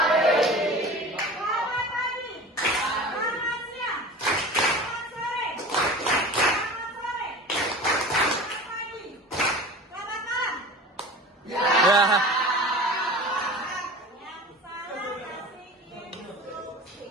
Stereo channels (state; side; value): normal; both; correlation 0.36